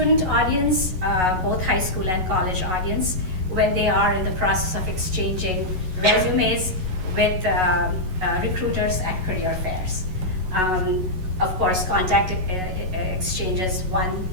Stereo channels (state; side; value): late; left; 11 ms